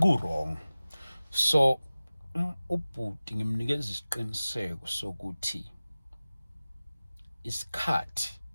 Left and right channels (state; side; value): inverted; both; correlation -0.97